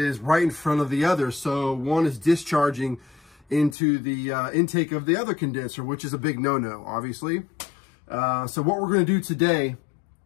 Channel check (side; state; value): right; drops out; at 3.8 s